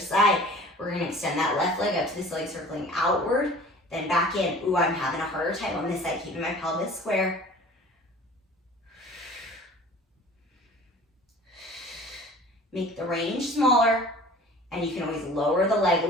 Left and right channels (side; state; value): both; normal; correlation 0.45